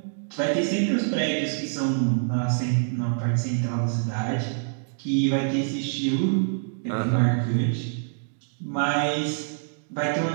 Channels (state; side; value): silent; left; digital silence